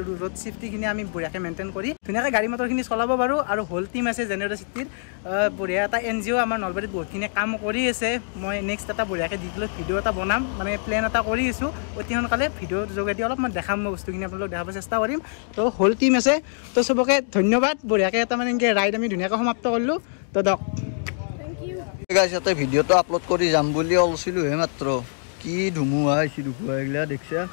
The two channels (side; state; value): right; silent; digital silence